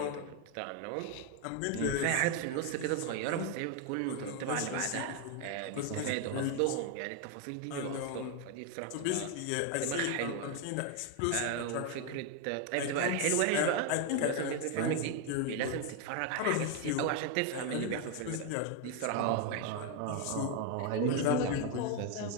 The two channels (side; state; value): both; different; correlation 0.01